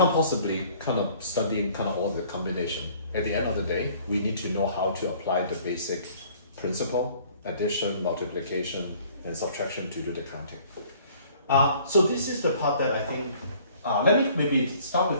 possibly kind of study kind of all the combination. At the end of the day, we need to know how to apply the basic principle, addition, multiplication, and subtraction to do the counting. So this is the part that I think, let me maybe start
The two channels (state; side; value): inverted; both; correlation -0.55